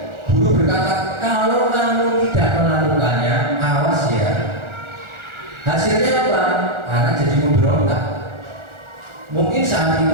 guru berkata, kalau kamu tidak melakukannya, awas ya. Hasilnya apa? Anak jadi memberontak. Mungkin saat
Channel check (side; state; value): left; late; 1.4 ms